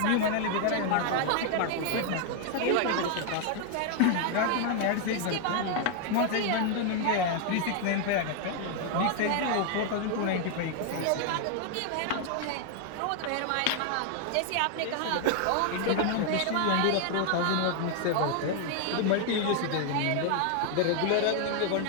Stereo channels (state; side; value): different; both; correlation 0.00